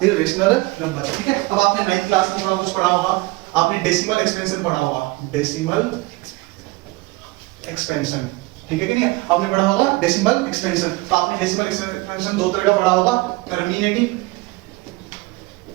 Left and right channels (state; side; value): quieter; left; 22.3 dB